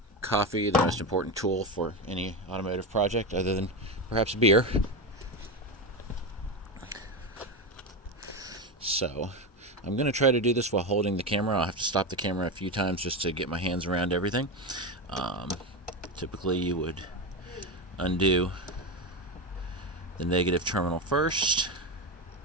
Coffee, the most important tool for any automotive project other than perhaps beer. So I'm going to try to do this while holding the camera. I'll have to stop the camera a few times just to get my hands around everything. Typically you would undo the negative terminal first.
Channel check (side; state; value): both; normal; correlation 0.16